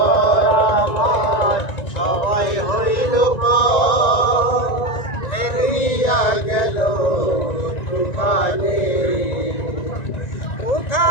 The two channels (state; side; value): late; right; 1.9 ms